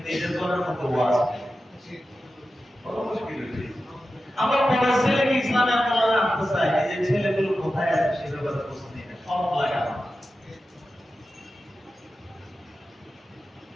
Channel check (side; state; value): both; normal; correlation 0.92